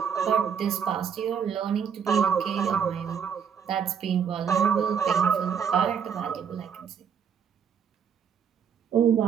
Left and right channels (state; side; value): quieter; left; 7.3 dB